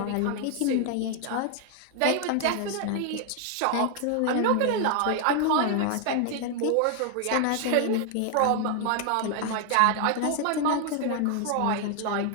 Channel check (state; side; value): different; both; correlation 0.00